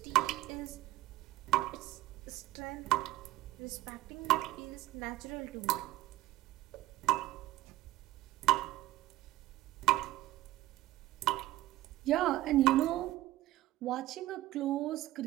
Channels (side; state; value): left; quieter; 16.4 dB